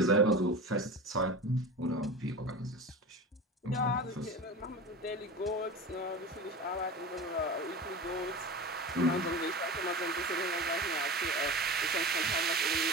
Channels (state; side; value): normal; both; correlation 0.30